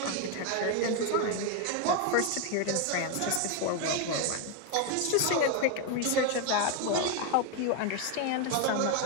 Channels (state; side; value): different; both; correlation 0.01